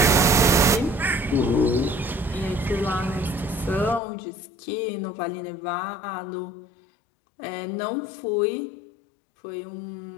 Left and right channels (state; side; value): drops out; right; at 4.0 s